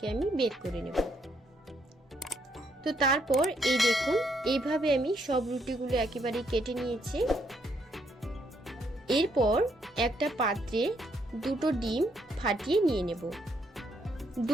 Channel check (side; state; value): both; normal; correlation 0.73